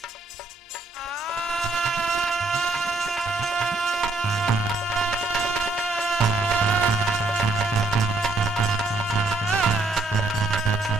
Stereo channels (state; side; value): quieter; left; 3.1 dB